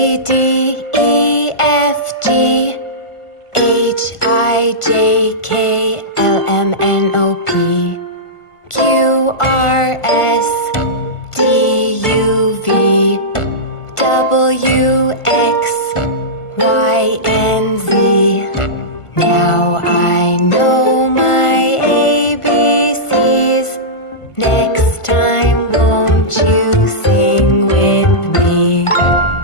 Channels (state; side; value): late; right; 1.5 ms